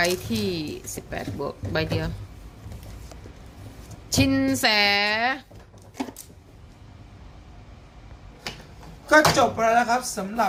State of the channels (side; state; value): both; identical; correlation 1.00